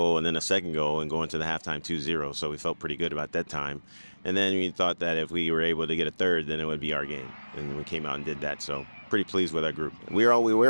and then a second goal and go into the halftime 2-0, so we felt pretty good about that time. And then we thought that if we were able to get a third, then it would be our game. And we came out and did that, so pretty pleased with our group. We're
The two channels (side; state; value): both; inverted; correlation -1.00